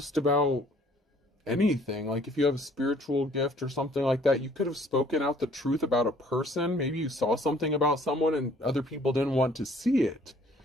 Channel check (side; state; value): both; normal; correlation 0.58